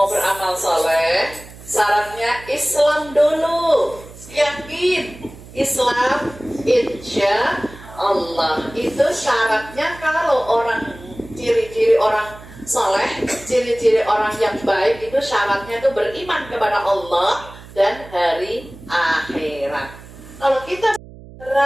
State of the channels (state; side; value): noise; right; hum, 18 dB below the sound